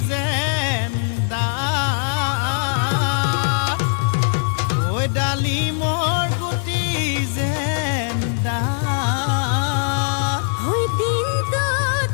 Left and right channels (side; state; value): right; silent; digital silence